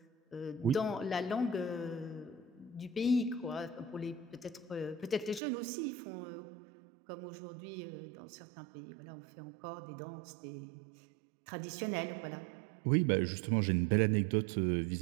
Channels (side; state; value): left; drops out; at 5.4 s